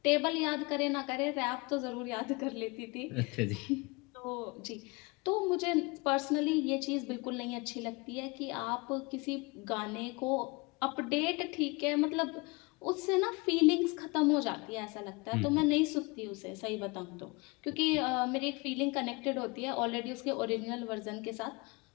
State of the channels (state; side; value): quieter; right; 26.6 dB